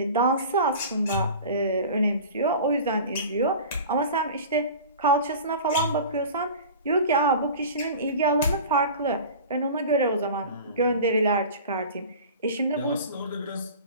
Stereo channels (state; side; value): inverted; both; correlation -0.37